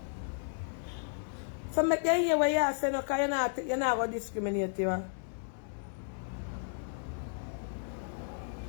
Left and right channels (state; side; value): silent; right; digital silence